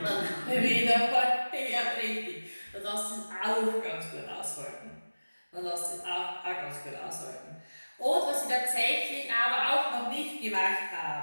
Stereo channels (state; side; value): inverted; both; correlation -1.00